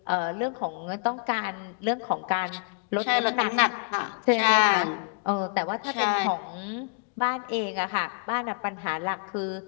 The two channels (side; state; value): right; quieter; 37.8 dB